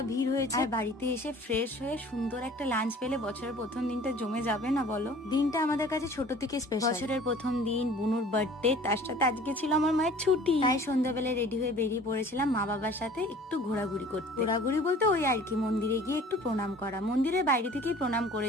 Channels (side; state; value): both; normal; correlation 0.48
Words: ভিড় হয়েছে। আর বাড়িতে এসে ফ্রেশ হয়ে সুন্দর একটা লাঞ্চ পেলে বছরের প্রথম দিনটা জমে যাবে না বলো? দিনটা আমাদের কাছে ছোট থেকে স্পেশাল। বছরের প্রথম দিন, বুনুর বার্থডে, তার সাথে আজকে ছিল আমার মায়ের ছুটি। তাই সন্ধ্যাবেলায় রেডি হয়ে বেরিয়ে পড়েছিলাম মা বাবার সাথে একটু ঘোরাঘুরি করতে। ঘোরাঘুরি বলতে ওই আর কি, মন্দিরে গিয়ে একটু প্রণাম করা। মন্দিরের বাইরে থেকেই প্রণাম